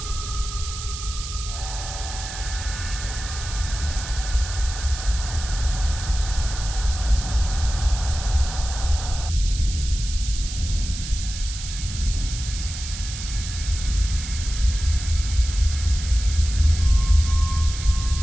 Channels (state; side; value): noise; right; hiss, 9 dB below the sound